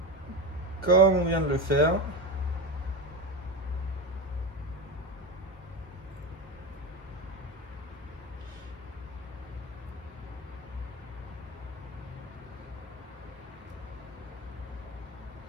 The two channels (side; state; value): both; normal; correlation 0.19